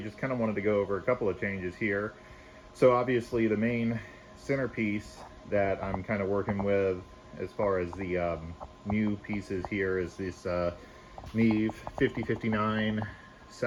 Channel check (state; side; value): identical; both; correlation 1.00